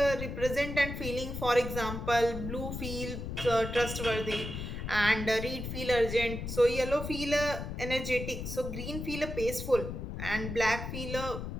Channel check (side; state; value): left; noise; rumble, 6 dB below the sound